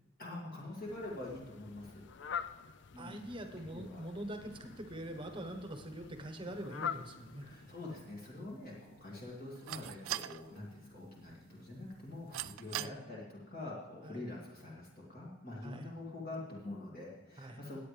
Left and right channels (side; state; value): both; normal; correlation 0.47